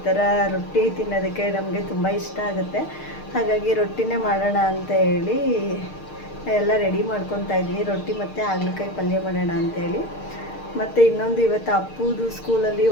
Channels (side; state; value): right; late; 6.6 ms